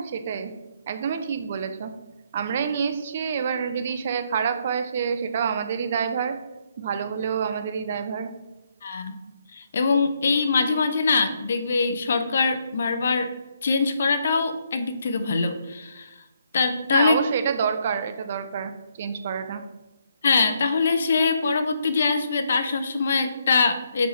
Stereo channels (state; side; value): inverted; both; correlation -0.74